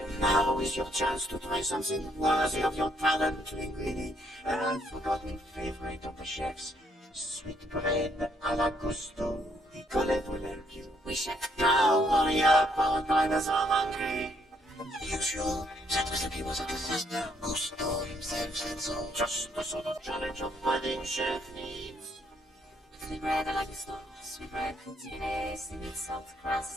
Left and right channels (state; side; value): normal; both; correlation 0.70